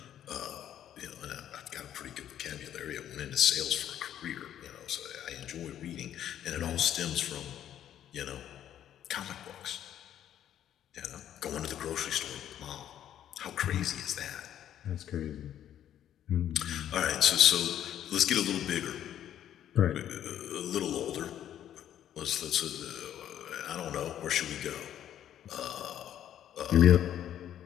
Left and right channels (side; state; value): right; quieter; 10.8 dB